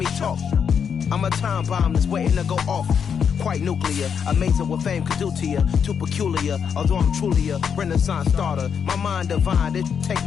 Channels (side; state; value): right; quieter; 7.1 dB